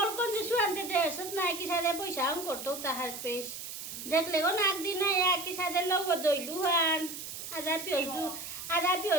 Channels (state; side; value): noise; right; hiss, 9 dB below the sound